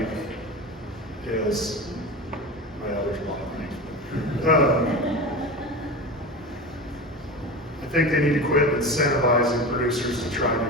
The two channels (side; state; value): both; normal; correlation 0.28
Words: is, well, there's a lot of things. I think they need to quit incentivizing producers to try